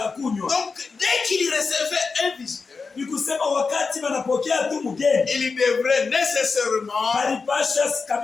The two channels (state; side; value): quieter; right; 4.7 dB